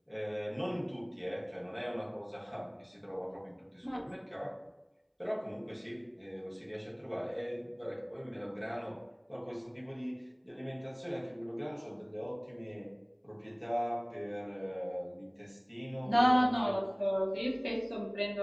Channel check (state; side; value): identical; both; correlation 1.00